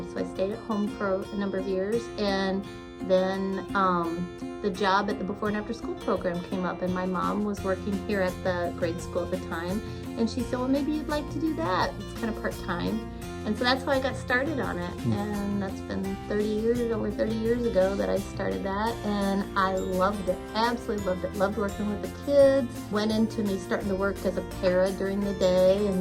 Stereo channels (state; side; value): identical; both; correlation 1.00